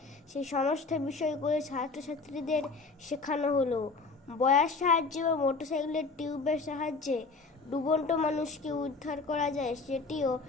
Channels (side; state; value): right; quieter; 4.1 dB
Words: সেই সমস্ত বিষয়গুলো ছাত্রছাত্রীদের শেখানো হলো। বয়ার সাহায্যে বা মোটরসাইকেলের টিউবের সাহায্যে ডুবন্ত মানুষকে উদ্ধার করা যায় সেটিও